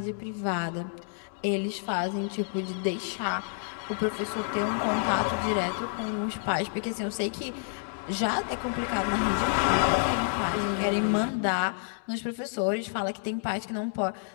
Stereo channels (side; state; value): right; silent; digital silence